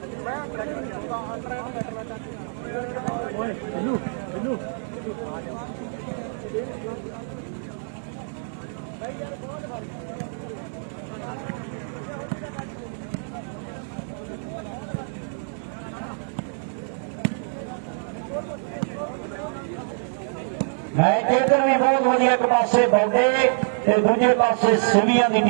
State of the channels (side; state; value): left; silent; 56 dB below the other